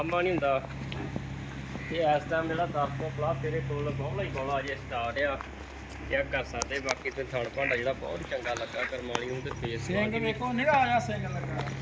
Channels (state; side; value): identical; both; correlation 1.00